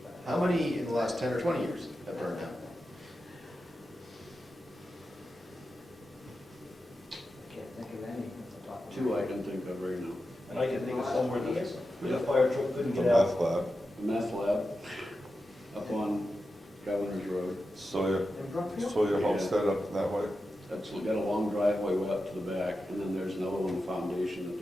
How many in the last 10 or 20 years have burned down? I can't think of any at the top of my Two I head. can think of right now. And I can think of somewhere Yes. that the fire truck couldn't The get out. meth lab, The meth lab up on Governor's Road. Sawyer, In Brookfield? Sawyer Homestead up that way. That's got a long driveway way up to the back, and then there's another one, foundation, that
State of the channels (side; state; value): both; normal; correlation 0.91